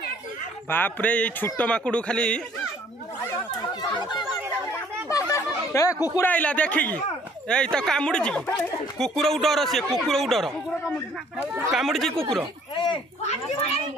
बाप रे ये छोट माकुड़ खाली ए कुकुर आइला देखिकी ए तो कामुड़ी कुकुर डर सी कुकुर डर कामुड़ी कुकुर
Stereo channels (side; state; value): both; normal; correlation 0.59